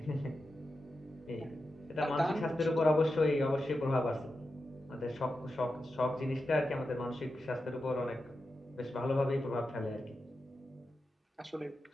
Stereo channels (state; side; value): normal; both; correlation 0.90